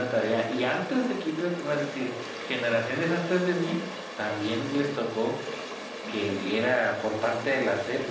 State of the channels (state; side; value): identical; both; correlation 1.00